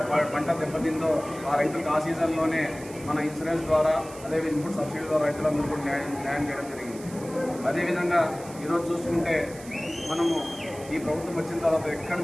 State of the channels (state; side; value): noise; right; hiss, 18 dB below the sound